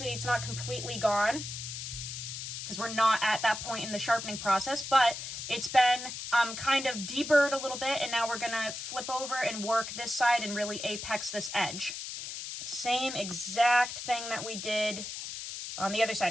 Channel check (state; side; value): noise; left; hiss, 7 dB below the sound